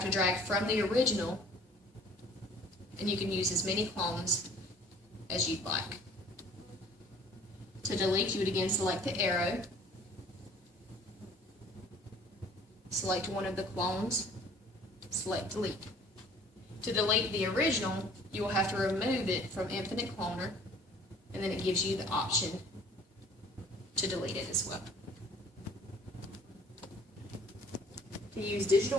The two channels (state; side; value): normal; both; correlation 0.53